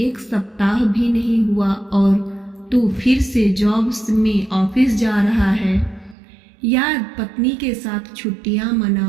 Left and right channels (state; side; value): drops out; left; at 6.2 s